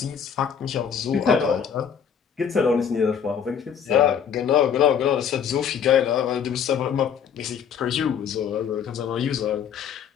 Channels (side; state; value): right; quieter; 7.8 dB